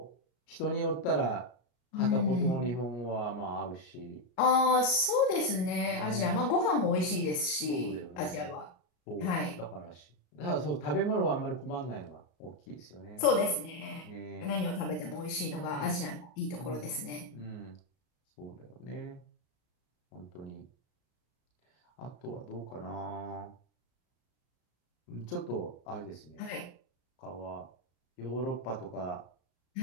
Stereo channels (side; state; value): right; late; 33 ms